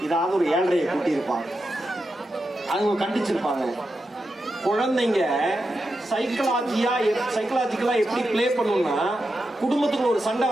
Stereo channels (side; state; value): both; normal; correlation 0.88